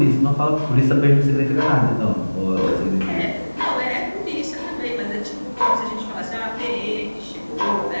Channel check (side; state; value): both; inverted; correlation -1.00